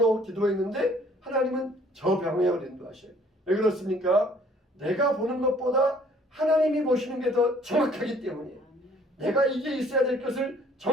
기도했는데 하나님은 저 방향으로 인도하셔요. 왜 그렇습니까? 내가 보는 것보다 하나님이 보시는 게 더 정확하기 때문이에요. 내가 이게 있어야 될 것을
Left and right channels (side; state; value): both; normal; correlation 0.58